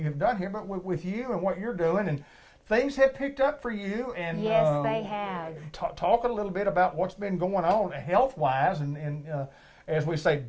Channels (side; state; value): both; identical; correlation 1.00